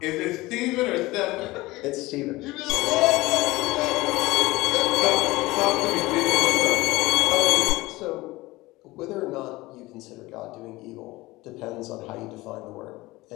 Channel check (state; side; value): quieter; right; 20.0 dB